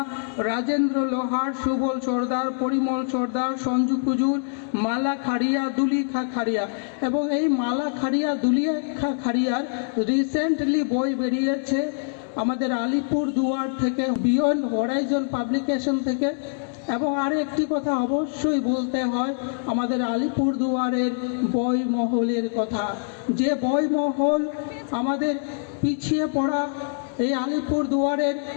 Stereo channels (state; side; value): silent; right; digital silence